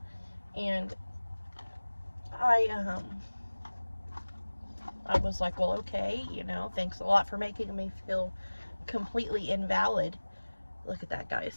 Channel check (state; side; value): inverted; both; correlation -1.00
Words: And I was like, well, okay, thanks a lot for making me feel completely invalid. Look at that,